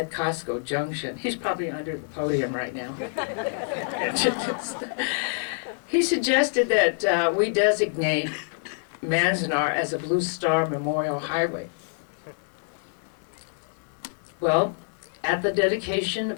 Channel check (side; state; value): right; silent; digital silence